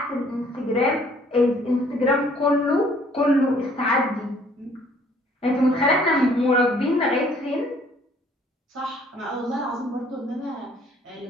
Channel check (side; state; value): both; normal; correlation 0.60